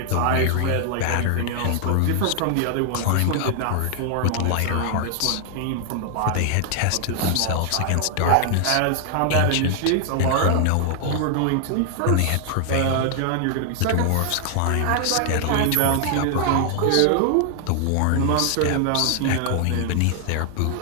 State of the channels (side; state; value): both; different; correlation 0.00